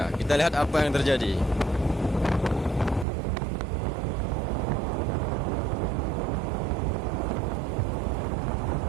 Kita lihat apa yang terjadi.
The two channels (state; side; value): drops out; left; at 3.1 s